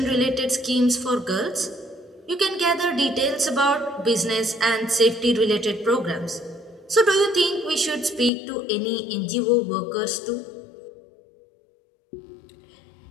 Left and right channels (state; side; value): drops out; right; at 8.3 s